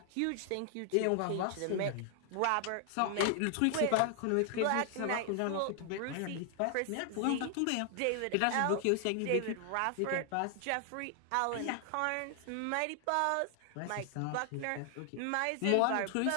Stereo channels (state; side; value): different; both; correlation 0.00